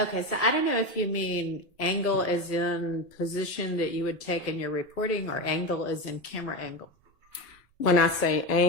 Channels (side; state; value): both; normal; correlation 0.19